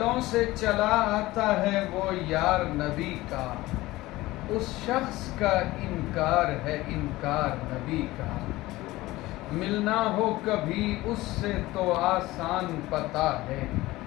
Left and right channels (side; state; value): right; quieter; 18.5 dB